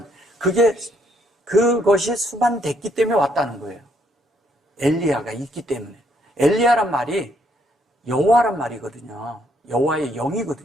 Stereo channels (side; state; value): both; normal; correlation 0.70